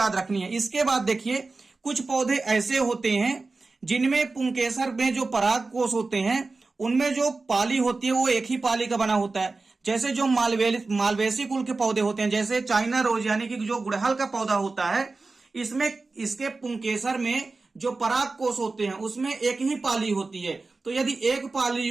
रखनी है। इसके बाद देखिए कुछ पौधे ऐसे होते हैं जिनमें पुंकेसर में जो पराग कोश होते हैं उनमें जो पाली होती है वो एक ही पाली का बना होता है। जैसे जो मालवेसी कुल के पौधे होते हैं, जैसे चाइना रोज यानी कि जो गुड़हल का पौधा होता है, इसमें इसके पुंकेसर में जो पराग कोश होते हैं उसमें एक ही पाली होती है। तो यदि एक पाली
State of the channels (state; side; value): quieter; left; 3.7 dB